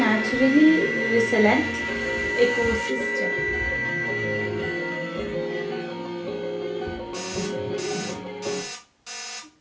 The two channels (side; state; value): both; identical; correlation 1.00